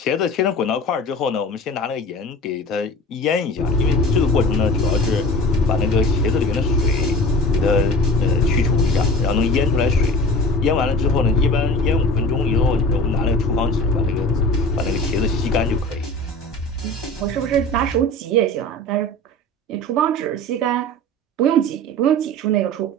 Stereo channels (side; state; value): both; normal; correlation 0.37